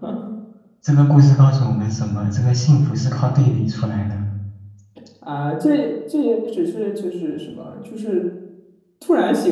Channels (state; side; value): identical; both; correlation 1.00